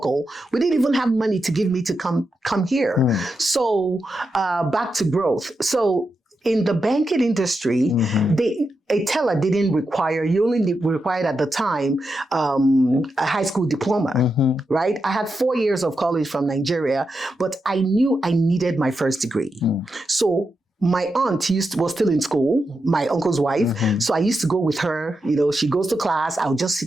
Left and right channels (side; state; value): both; normal; correlation 0.87